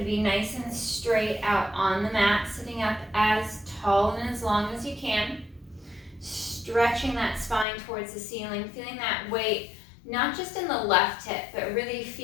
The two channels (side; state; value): right; drops out; at 7.7 s